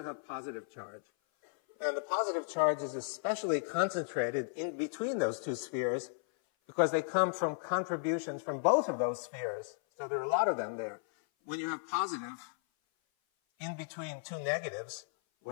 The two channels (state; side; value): silent; right; 55 dB below the other